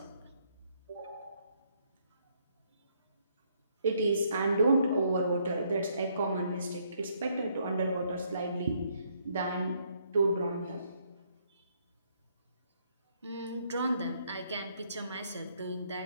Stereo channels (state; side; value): inverted; both; correlation -0.70